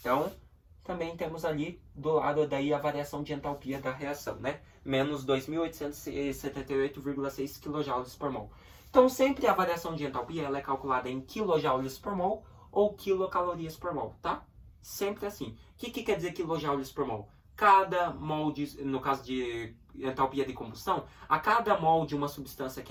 também temos ali do lado daí a variação de entalpia da reação, né? Menos 2.878,6 kJ por mol. Então, sempre a variação de entalpia ela é calculada em kJ por mol ou quilocalorias por mol, tá? Sempre assim. O que quer dizer quilojoules por mol? Cada mol, no caso de entalpia de combustão, a cada mol de uma substância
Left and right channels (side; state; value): both; identical; correlation 1.00